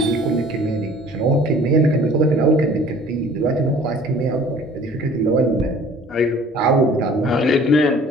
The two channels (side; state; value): both; normal; correlation 0.50